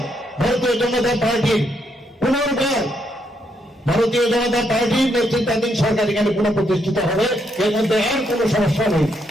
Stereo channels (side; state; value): both; normal; correlation 0.77